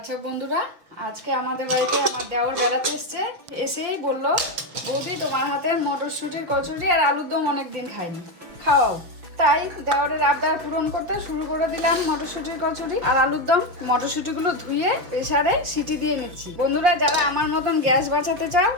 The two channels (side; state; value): left; late; 5.7 ms